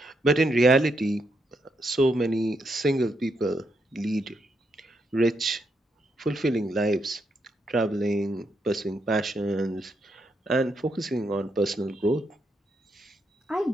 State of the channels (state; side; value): normal; both; correlation 0.79